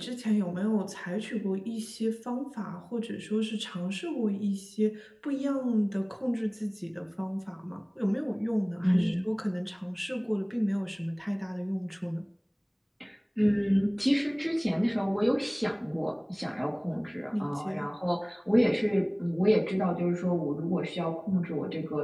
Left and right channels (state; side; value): identical; both; correlation 1.00